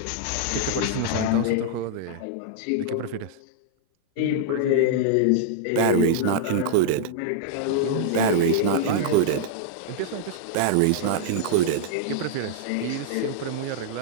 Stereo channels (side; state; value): both; different; correlation -0.01